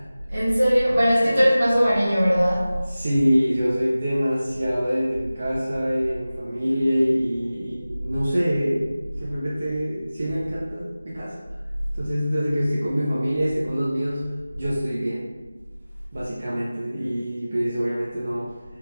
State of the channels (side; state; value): both; inverted; correlation -0.97